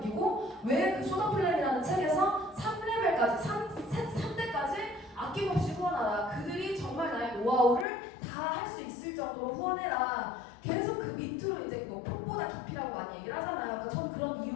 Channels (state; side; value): drops out; right; at 7.9 s